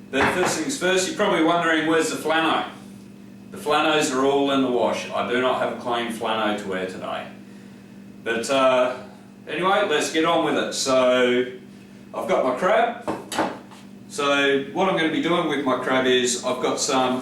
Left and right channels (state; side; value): identical; both; correlation 1.00